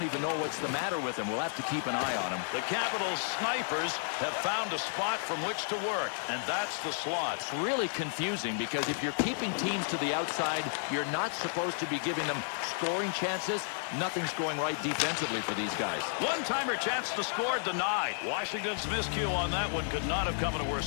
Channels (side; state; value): right; silent; digital silence